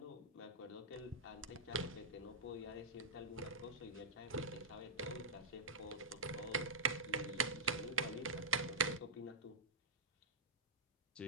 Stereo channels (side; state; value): left; quieter; 3.1 dB